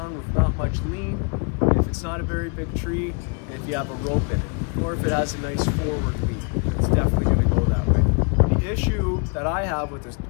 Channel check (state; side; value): quieter; right; 37.7 dB